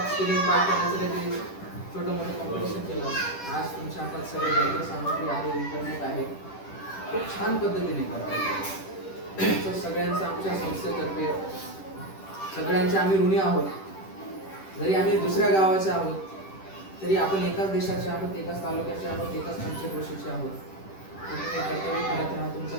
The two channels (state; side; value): late; right; 10 ms